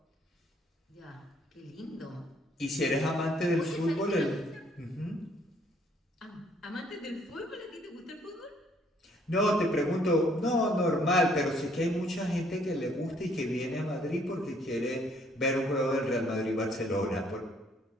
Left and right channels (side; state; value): both; normal; correlation 0.65